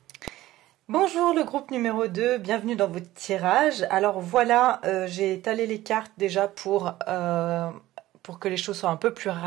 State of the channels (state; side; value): quieter; left; 15.9 dB